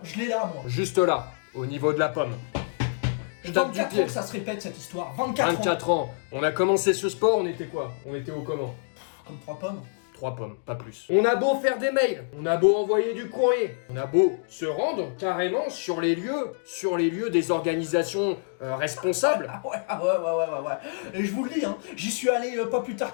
je l'ai là moi. Juste là, au niveau de la pomme. Je tape du 24 pied. ans que ça se répète cette histoire. 24 ans. 24 ans. On a commencé ce sport, on était quoi? On était au comment? Comme 3 pommes. 3 pommes, pas plus. On a beau faire des mails, on a beau envoyer du courrier, on a beau se rendre carrément sur les lieux des organisations responsables. Ah ouais. Et je vous le dis, hein, j'y suis allé pas plus tard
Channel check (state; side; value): silent; right; digital silence